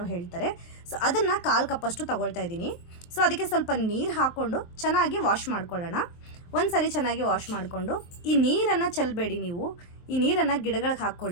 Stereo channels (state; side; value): late; right; 23 ms